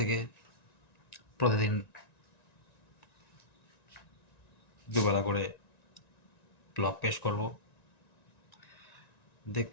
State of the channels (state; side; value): late; right; 1.9 ms